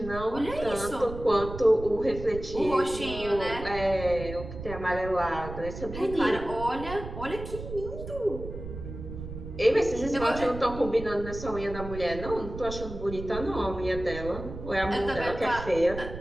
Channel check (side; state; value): right; noise; rumble, 10 dB below the sound